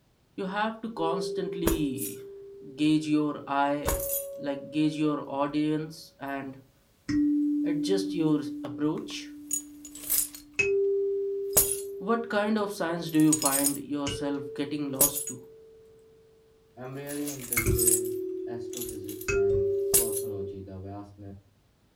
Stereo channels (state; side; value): identical; both; correlation 1.00